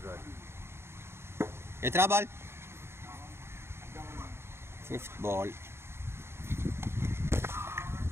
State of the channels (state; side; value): late; left; 0.12 ms